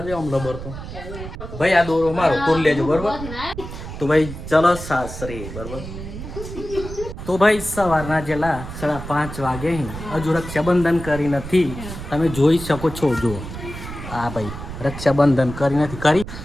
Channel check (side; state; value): right; noise; rumble, 10 dB below the sound